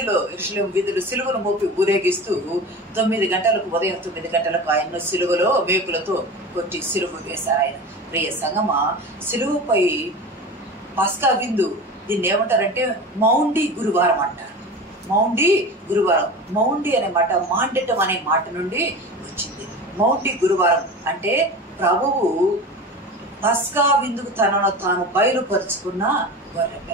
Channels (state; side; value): normal; both; correlation 0.32